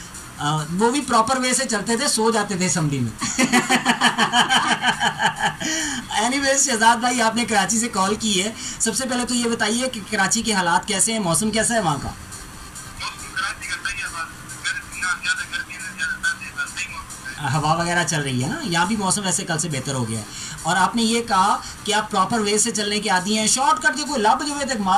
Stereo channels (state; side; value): identical; both; correlation 1.00